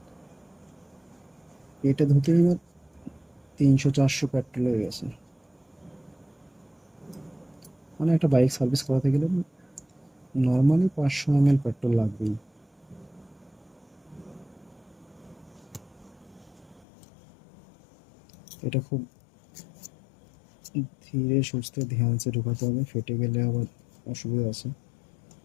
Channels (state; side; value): drops out; right; at 16.9 s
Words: এটা ধুতে এবার 300-400 পেট্রোল হয়ে গেছে। মানে একটা বাইক সার্ভিস করাতে গেলে নর্মালি 500 ml পেট্রোল লাগবেই। এটা খুব ধীরে সুস্থে ধ্যানসে ঢোকাতে হবে, ফেটে গেলে আবার অসুবিধা আছে,